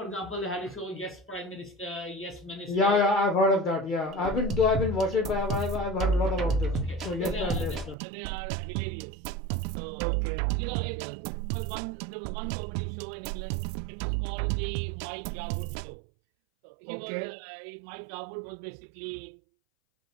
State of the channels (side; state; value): left; drops out; at 8.0 s